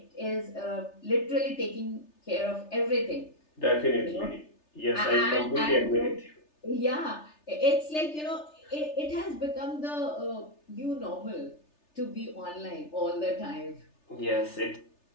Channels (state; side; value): late; right; 3.3 ms